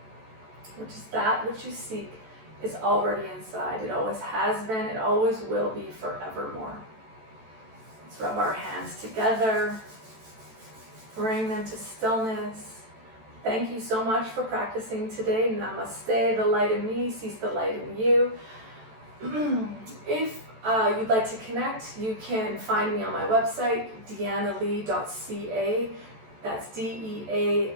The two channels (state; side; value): late; left; 14 ms